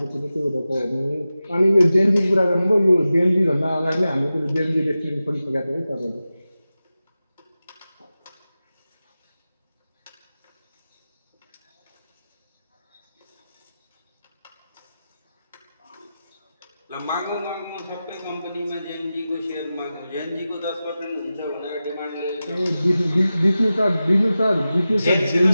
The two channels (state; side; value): inverted; both; correlation -0.94